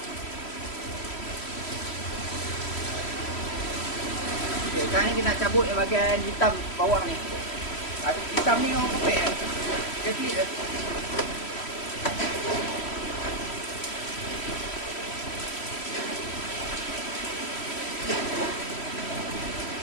Okay, sekarang ni kita nak cabut yang bahagian hitam bawah ni. Hitam ni orang kopek dia flip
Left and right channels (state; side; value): late; right; 3.1 ms